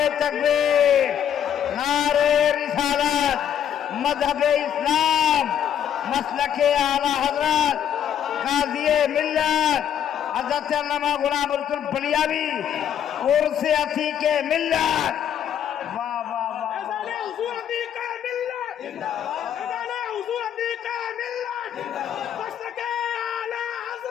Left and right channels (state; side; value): quieter; right; 9.5 dB